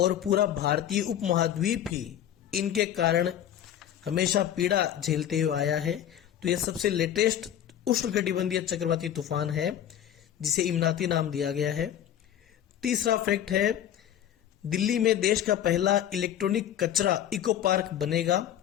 पूरा भारतीय उपमहाद्वीप ही इनके कारण हमेशा पीड़ा झेलते हुए आया है। तो यह सबसे लेटेस्ट उष्णकटिबंधीय चक्रवाती तूफान है जिसे इमराती नाम दिया गया है। तीसरा फैक्ट है, दिल्ली में देश का पहला इलेक्ट्रॉनिक कचरा इको पार्क बनेगा।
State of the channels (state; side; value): quieter; right; 10.6 dB